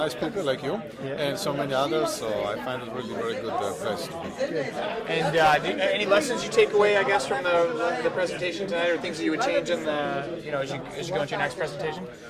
people like you, and so many others. So I find it really very good place to be. And any lessons you take away, I guess, from the presentation tonight, or things that you would change in the, as you go into your next presentation?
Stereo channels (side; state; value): both; identical; correlation 1.00